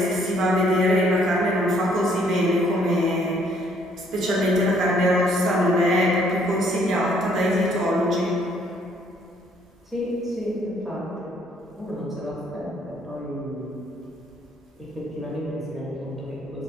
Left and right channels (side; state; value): both; normal; correlation 0.65